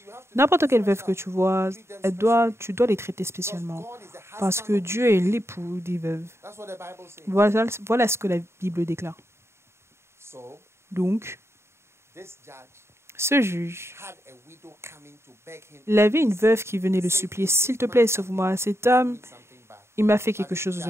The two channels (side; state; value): left; late; 0.13 ms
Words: N'importe quelle veuve que tu vois, tu dois les traiter spécialement. Parce que Dieu est l'époux des veuves. Voilà ce que la Bible déclare. Donc, ce juge, il avait une veuve qui venait le supplier, « S'il te plaît, sauve-moi. Cet homme, il m'a fait quelque chose